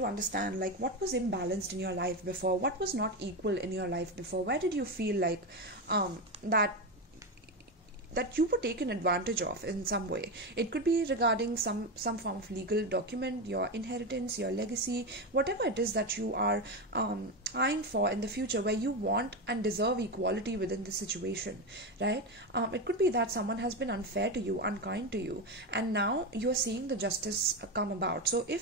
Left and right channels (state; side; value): normal; both; correlation 0.15